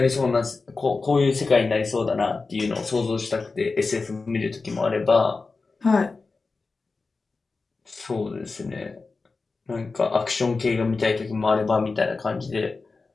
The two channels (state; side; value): quieter; right; 4.0 dB